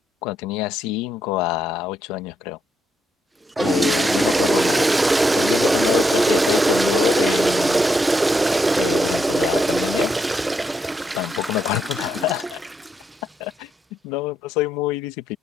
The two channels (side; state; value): both; normal; correlation 0.79